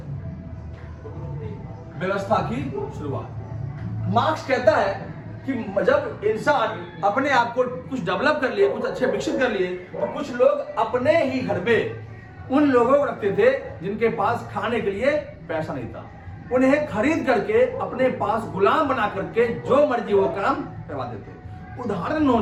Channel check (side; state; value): both; identical; correlation 1.00